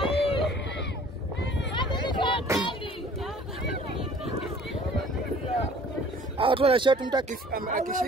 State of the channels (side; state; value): both; normal; correlation 0.51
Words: Watu wana shot mtu